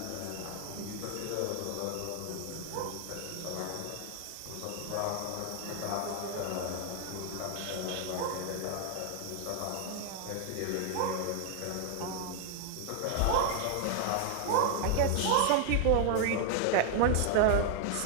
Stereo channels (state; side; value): different; both; correlation 0.00